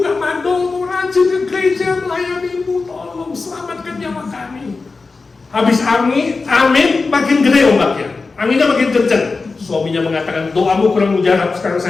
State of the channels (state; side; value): quieter; right; 4.1 dB